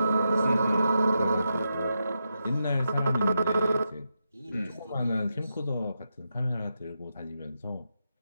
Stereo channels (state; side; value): inverted; both; correlation -0.86